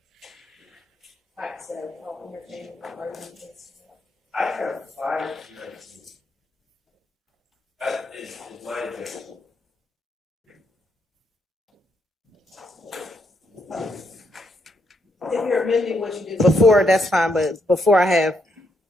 All right, so I'll entertain the argument. I have 519. That is my objection. If you're amending what you did before, that's fine, but before I have,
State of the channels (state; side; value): normal; both; correlation 0.77